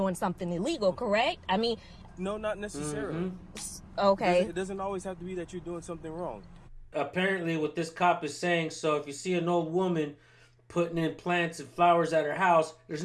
something illegal, correct? I mean, No, not necessarily. okay. It doesn't always have to be that you're doing something wrong. Apparently what this cop is saying, so if you see an old woman putting in plants and flowers at her house, there's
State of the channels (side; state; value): both; identical; correlation 1.00